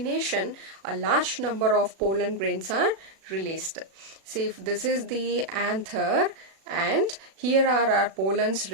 a large number of pollen grains are released. See, if this is the anther and here are our pollens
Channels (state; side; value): late; left; 36 ms